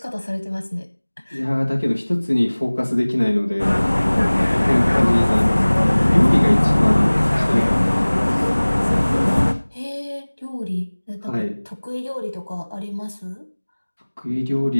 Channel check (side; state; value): both; inverted; correlation -1.00